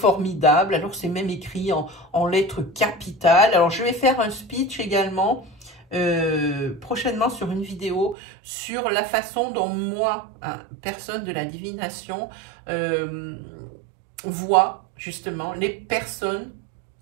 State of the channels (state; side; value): drops out; left; at 8.2 s